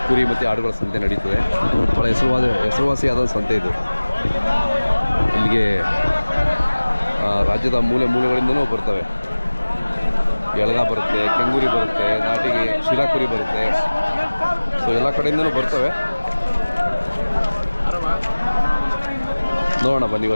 ಕುರಿ ಮತ್ತು ಆಡುಗಳ ಸಂತೆ ನಡೀತದೆ. ಭಾಳ ಹೆಸರುವಾಸಿಯಾದ ಸಂತೆ ಇದು. ಇಲ್ಲಿಗೆ ರಾಜ್ಯದ ಮೂಲೆ ಮೂಲೆಗಳಿಂದನೂ ಬರ್ತವೆ. ಎಳಗ ಬರುತ್ತೆ, ಕೆಂಗೂರಿ ಬರುತ್ತೆ, ನಾಟಿಗೆ ಶಿರಾ ಕುರಿ ಬರುತ್ತೆ. ಸೊ ಎಲ್ಲ ಕಡೆಯಿಂದನೂ ಬರ್ತವೆ. ನೋಡೋಣ ಬನ್ನಿ.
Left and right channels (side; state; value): both; inverted; correlation -1.00